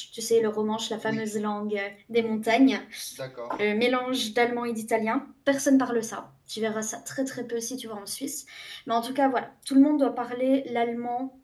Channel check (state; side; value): identical; both; correlation 1.00